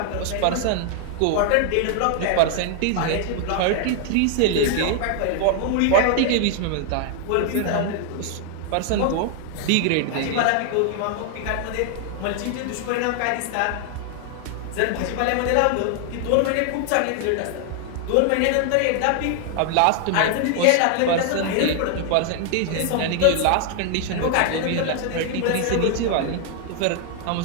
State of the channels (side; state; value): both; different; correlation 0.00